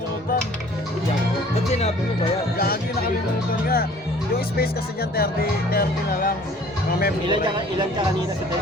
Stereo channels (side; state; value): left; noise; rumble, 30 dB below the sound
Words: Ba't sinabi mo ba yan? Gagi, nakalimutan nga. Yung space kasi dyan, 30 na lang. Mga memory. Ilan ka kanina sa